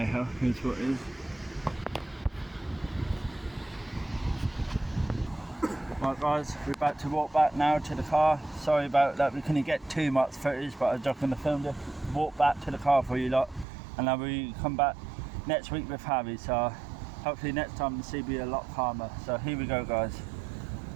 ho, here's what it is. Right guys, we're about to walk back now to the car. Sorry about that, we couldn't get too much footage, but I was just going to film this. Walk back to the car for you lot. And then we come back next week with Harry, so hopefully next time the sea will be a lot calmer. So here we go guys.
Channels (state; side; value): drops out; left; at 13.7 s